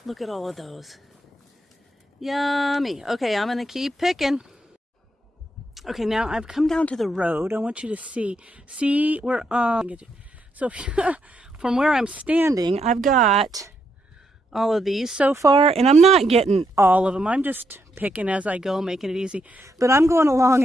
look at all of those. Yummy. Okay, I'm gonna keep picking. Okay, now I've come down to the road. I want you to see where, so from where I'm standing, I've got all of these so far, and I'm not getting all of them. I'm just picking as I go, making it easy. But I'm going along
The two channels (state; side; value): normal; both; correlation 0.79